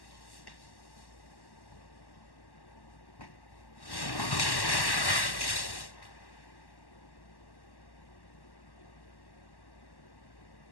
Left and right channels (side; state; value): right; late; 1.1 ms